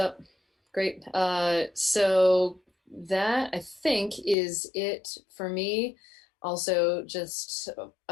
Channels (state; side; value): drops out; right; at 4.4 s